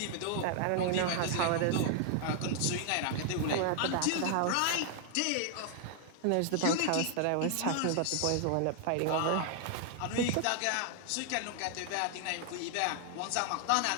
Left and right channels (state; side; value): different; both; correlation 0.00